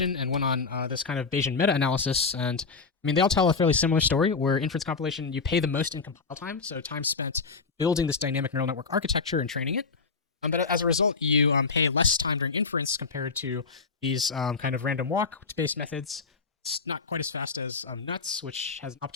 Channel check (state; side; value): quieter; right; 4.6 dB